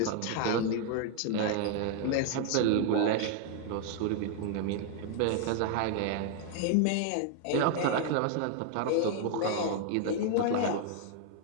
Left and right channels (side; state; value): both; different; correlation 0.00